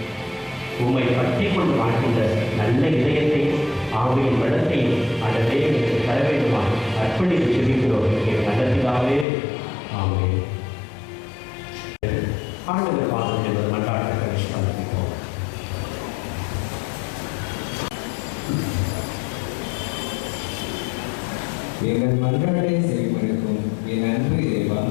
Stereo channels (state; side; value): drops out; right; at 9.2 s